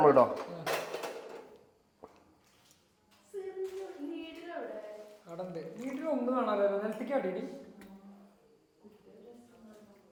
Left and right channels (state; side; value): identical; both; correlation 1.00